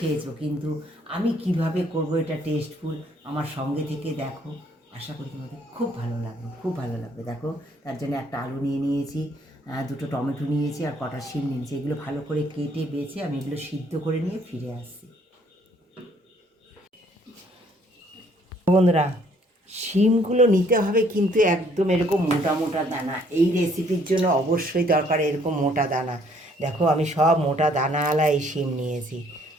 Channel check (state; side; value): normal; both; correlation 0.63